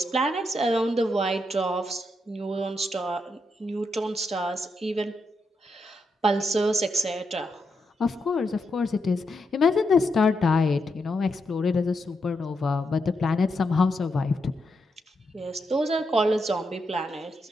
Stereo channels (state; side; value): normal; both; correlation 0.83